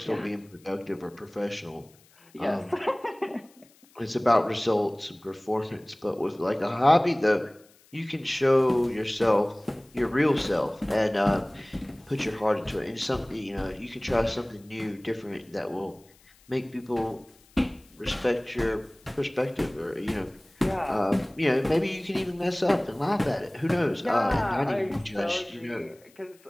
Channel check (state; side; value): noise; left; hiss, 29 dB below the sound